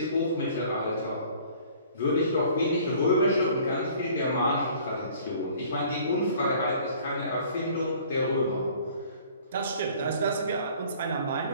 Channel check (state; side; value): inverted; both; correlation -0.52